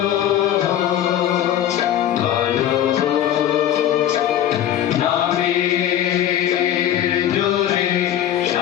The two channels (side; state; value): right; quieter; 11.0 dB